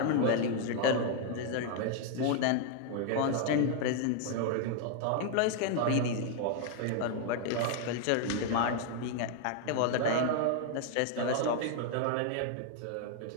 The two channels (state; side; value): different; both; correlation 0.00